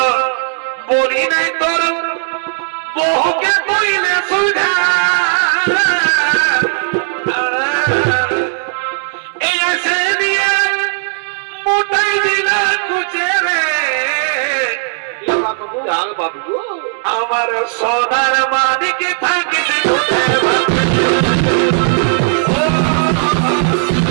বলি নাই তোর বহুকে কইলে সুধা এই আসে দিয়ে মোটাই দিলা কুচে রে আমার সোনার মানে কি থাকিস দুধে ভাতে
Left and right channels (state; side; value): silent; left; digital silence